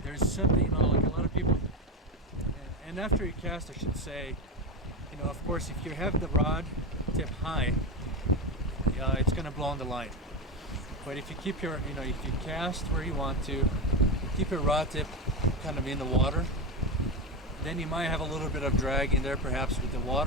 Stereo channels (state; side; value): normal; both; correlation 0.17